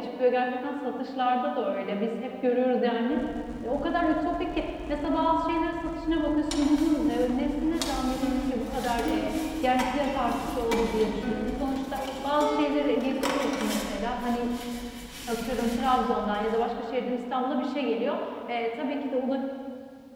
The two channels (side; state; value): both; identical; correlation 1.00